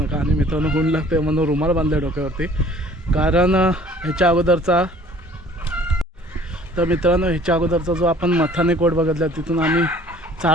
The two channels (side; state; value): both; normal; correlation 0.53